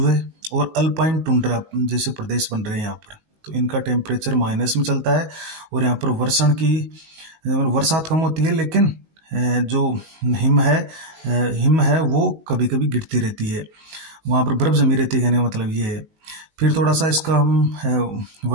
और अल्पाइन टुंड्रा जैसे प्रदेश बन रहे हैं यहाँ पर, तो इनका टेम्परेचर माइनस में चलता है। और यहाँ पर वर्षण की बरसात कम होती है, लेकिन जो हिम है वो कभी कभी गिरती रहती है, वहाँ पर बर्फ जमी रहती है, कहने का मतलब ये है। फिर थोड़ा सा इसका हम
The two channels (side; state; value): left; late; 19 ms